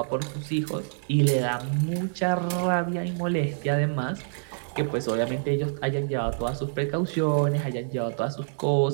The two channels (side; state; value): left; silent; digital silence